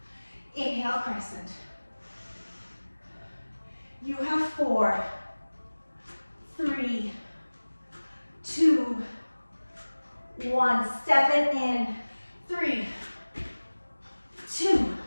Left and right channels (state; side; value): inverted; both; correlation -1.00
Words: Inhale, crescent. You have 4, 3, 2, 1. Step it in. 3, 2,